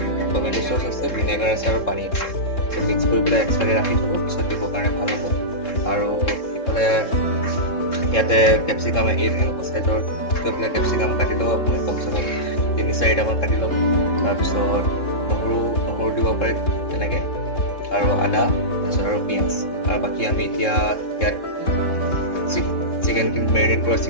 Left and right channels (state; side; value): late; right; 3.7 ms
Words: টমেটো চচ আছে, ভিনেগাৰ আছে আৰু পানী আছে। মিক্স কৰি পেলাই এক্সট্ৰাকৈ ৰাখি থ'ব, পিছত দিবৰ কাৰণে ভাল হ'ব। আৰু ইফালে ইয়াতে কেপচিকাম এনেকুৱা চাইজৰ গৈ পেলাই কেপচিকাম কাটি ল'ব আপুনি, কমচে কম 3-4টামান কাটি ল'ব। তাৰপিছত নহৰু দিব পাৰে তেনেকৈ, আৰু আদা, তাৰপিছত আৰু পিঁয়াজ। আৰু বাকী আমি এতিয়া ইয়াত চিকেনখিনি মেৰিনেট কৰা